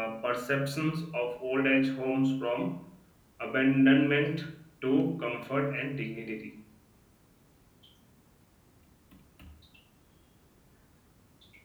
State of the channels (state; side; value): identical; both; correlation 1.00